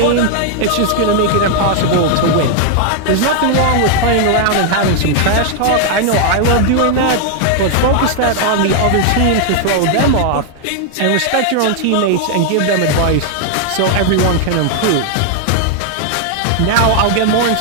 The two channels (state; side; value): different; both; correlation 0.00